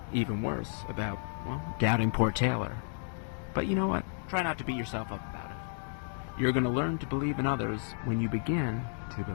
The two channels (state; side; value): silent; right; digital silence